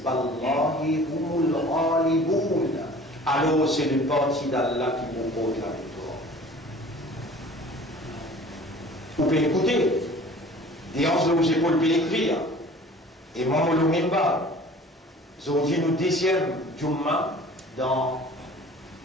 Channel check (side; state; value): both; normal; correlation 0.46